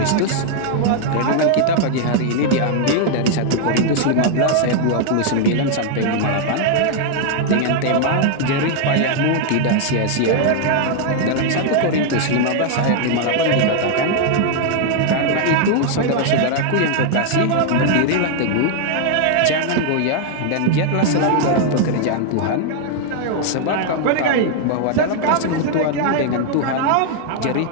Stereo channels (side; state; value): both; different; correlation 0.00